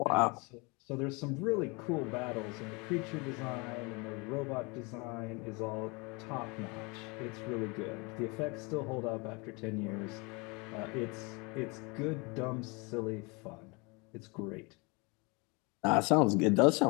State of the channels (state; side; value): quieter; right; 28.6 dB